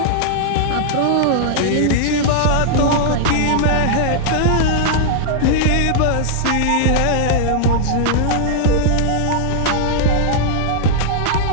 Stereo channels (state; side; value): different; both; correlation -0.01